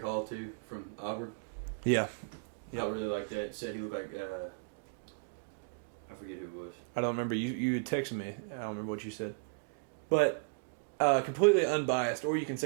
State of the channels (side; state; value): left; quieter; 35.4 dB